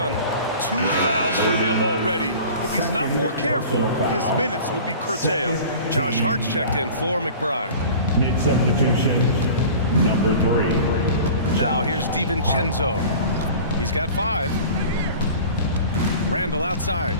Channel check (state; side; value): inverted; both; correlation -0.41